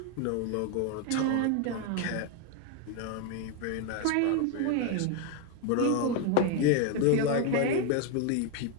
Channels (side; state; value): both; different; correlation 0.01